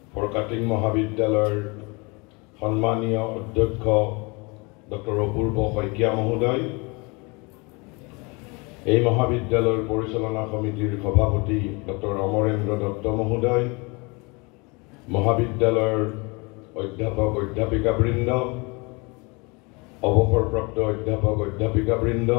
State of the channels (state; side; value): quieter; right; 28.2 dB